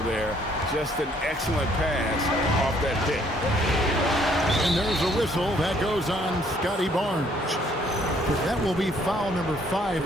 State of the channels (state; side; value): normal; both; correlation 0.64